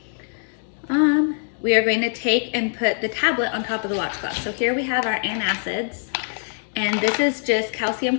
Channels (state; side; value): silent; right; digital silence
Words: take and put the tablet on top of the watch glass. So here we have our antacids, and this is just